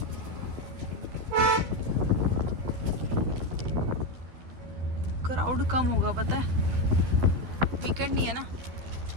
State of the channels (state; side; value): late; left; 12 ms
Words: Crowd कम होगा पता है, वीकेंड नहीं है ना।